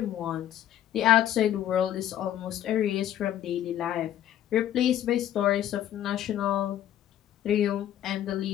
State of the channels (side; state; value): right; quieter; 11.7 dB